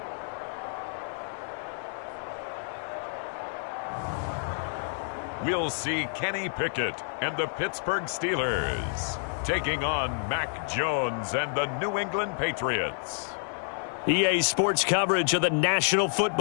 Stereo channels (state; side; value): silent; right; digital silence